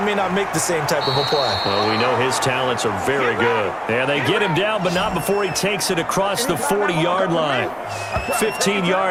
not make the same type of a play. Well, we know his talents are very good. And they get him down, but not before he takes it across the 40-yard line. 15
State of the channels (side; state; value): both; identical; correlation 1.00